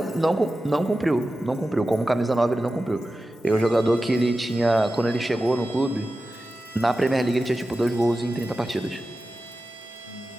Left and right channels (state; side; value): normal; both; correlation 0.93